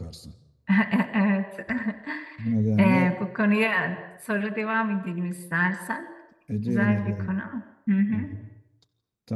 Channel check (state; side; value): identical; both; correlation 1.00